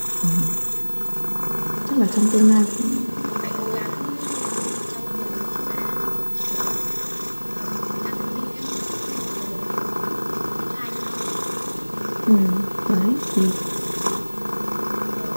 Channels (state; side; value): inverted; both; correlation -1.00